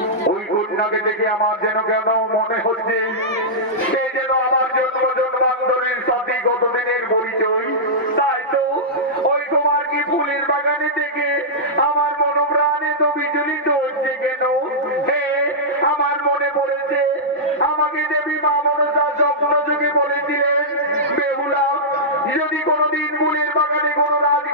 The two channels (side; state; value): both; normal; correlation -0.12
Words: ওই কন্যাকে দেখে আমার যেন কেন মনে হচ্ছে সে যেন আমার জন্ম জন্মান্তরের সাথে কতদিনের পরিচয়। তাই তো ওই তোমার কি ফুলের বাগানে থেকে আমার মনোপ্রাণে তো বিচলিত হচ্ছে কেন? হে, আমার মনে পড়েছে আমাকে দেবী মা মনসা স্বপ্ন যুগে বলেছিলেন, বেহুলা যদি কোনোদিন ফুলের বাগানে কোনো